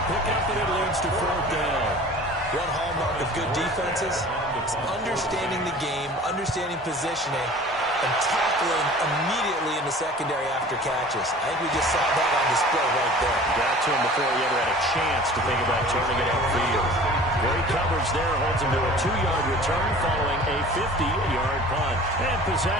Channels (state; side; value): normal; both; correlation 0.44